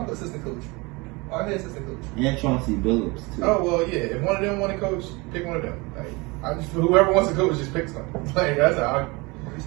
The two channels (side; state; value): left; quieter; 25.6 dB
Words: assistant coach. Our head assistant coach. and Chauncey Billups too. Oh well, yeah. If one of them want to coach, pick one of them. Like whoever wants to coach, just pick some. Like that's how What are you